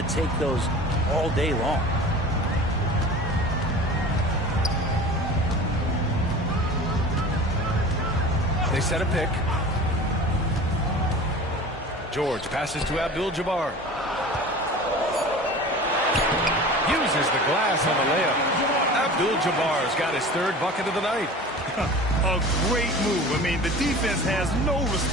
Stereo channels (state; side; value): normal; both; correlation 0.38